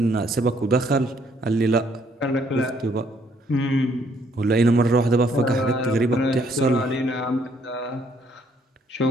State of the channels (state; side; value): normal; both; correlation 0.67